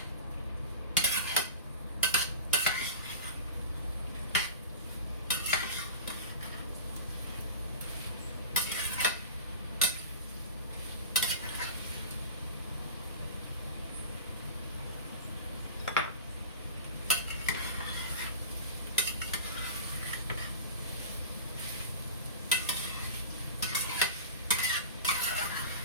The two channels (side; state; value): both; inverted; correlation -0.32